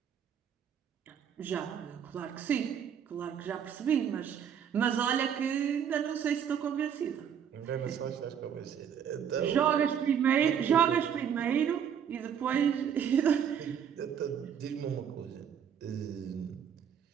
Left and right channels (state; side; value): quieter; left; 8.3 dB